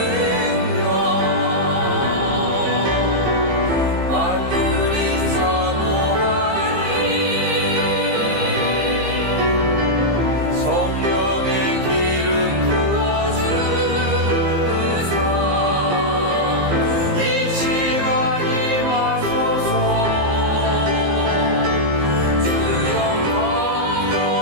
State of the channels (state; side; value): late; left; 15 ms